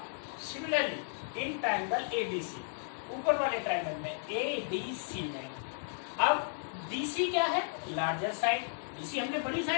सिमिलरली इन ट्रायंगल ABC, ऊपर वाले ट्रायंगल में ADC में, अब DC क्या है? Largest side. DC हमने बड़ी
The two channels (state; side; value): silent; right; digital silence